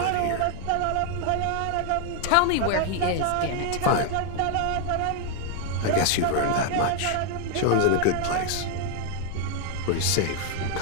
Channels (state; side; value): different; both; correlation 0.01